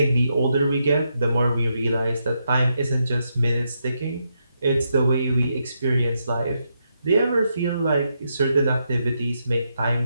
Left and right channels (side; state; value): both; inverted; correlation -0.81